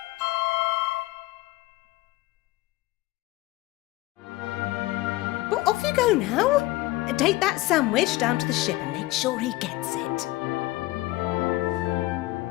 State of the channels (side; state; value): right; quieter; 18.7 dB